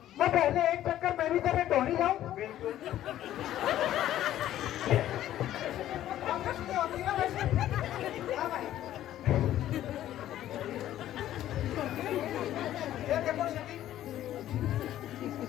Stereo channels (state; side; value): quieter; right; 12.7 dB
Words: मैं पहले एक चक्कर मैं भी तेरे ढोरी जाऊं? बिल्कुल।